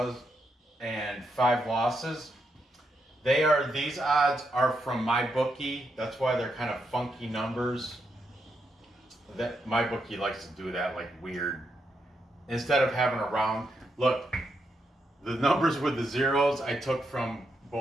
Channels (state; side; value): normal; both; correlation 0.82